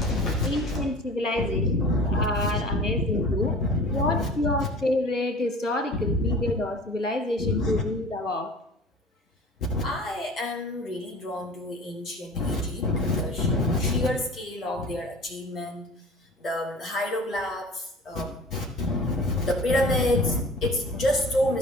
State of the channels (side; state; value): both; normal; correlation 0.42